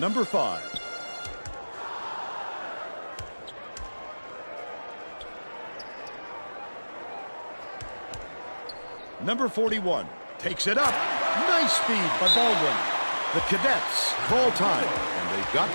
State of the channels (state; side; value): inverted; both; correlation -1.00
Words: 5. Number 41 takes it up. Nice speed by Baldwin. The Cadets call time, and they've got